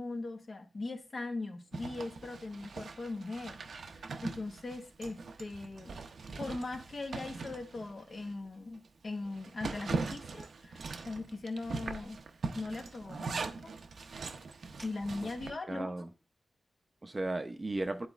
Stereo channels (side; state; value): both; normal; correlation 0.91